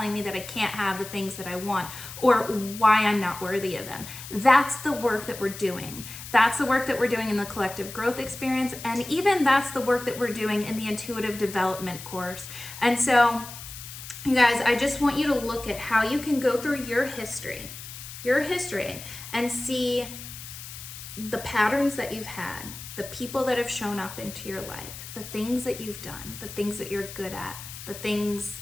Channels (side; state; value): left; noise; hiss, 12 dB below the sound